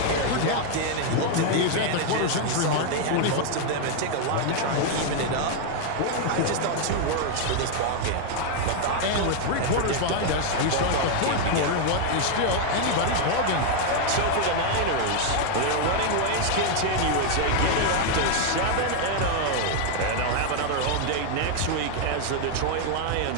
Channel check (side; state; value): both; different; correlation 0.00